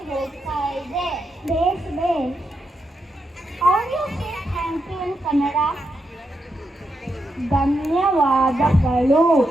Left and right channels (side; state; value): both; normal; correlation 0.84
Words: ಹೋಗ್ತಾ ಇದೆ? Base base. How do you say thank you in Kannada? ಧನ್ಯವಾದಗಳು.